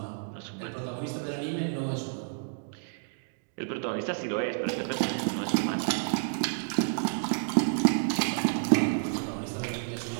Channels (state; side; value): silent; left; digital silence